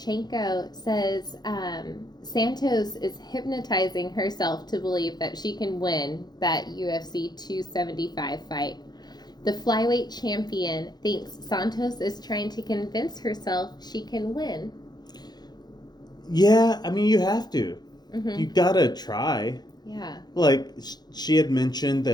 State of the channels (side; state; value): right; late; 0.20 ms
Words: says Santos is hypnotizing herself to believe that she can win that UFC 275 fight. The flyweight champion thinks Santos is trying to convince herself she can win. Yeah, I mean, you have to. You gotta try. Yeah. Like, she had mentioned